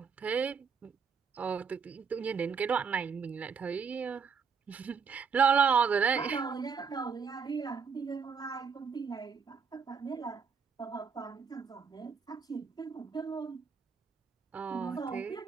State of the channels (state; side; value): quieter; left; 6.0 dB